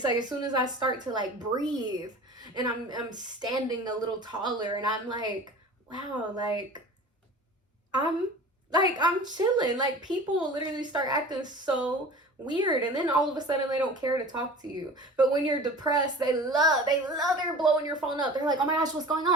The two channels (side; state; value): both; normal; correlation 0.40